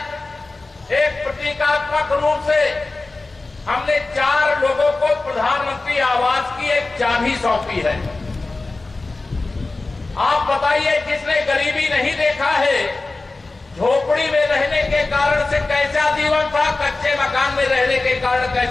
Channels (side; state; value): right; quieter; 3.4 dB